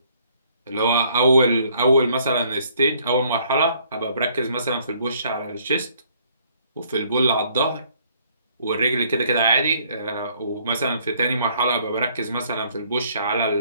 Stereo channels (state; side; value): inverted; both; correlation -0.63